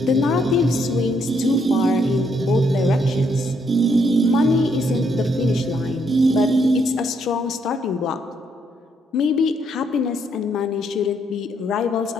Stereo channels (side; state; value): both; normal; correlation 0.73